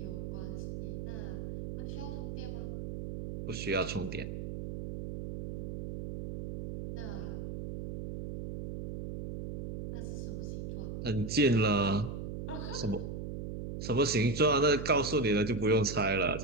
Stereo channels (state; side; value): noise; right; hum, 6 dB below the sound